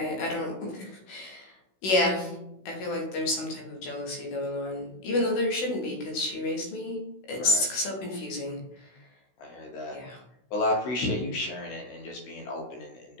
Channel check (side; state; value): right; late; 16 ms